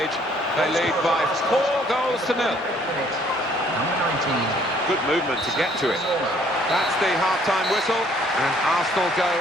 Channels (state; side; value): normal; both; correlation 0.62